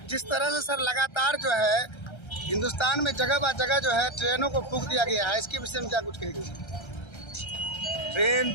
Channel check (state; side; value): late; right; 1.3 ms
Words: जिस तरह से सर लगातार जो है हिंदुस्तान में जगह बा जगह जो है ट्रेनों को फूंक दिया गया है, इसके विषय में क्या कुछ कहेंगे? ट्रेन